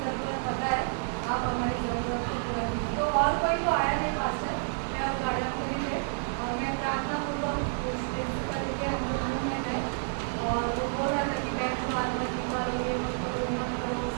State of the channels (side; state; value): left; silent; digital silence